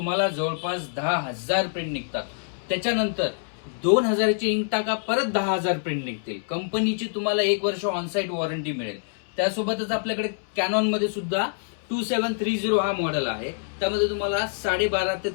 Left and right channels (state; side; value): silent; right; 61 dB below the other